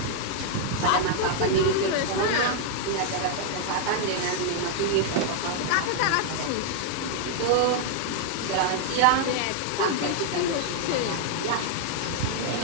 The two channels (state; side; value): different; both; correlation 0.00